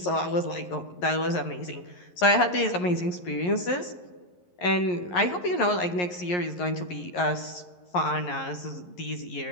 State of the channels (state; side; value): late; right; 11 ms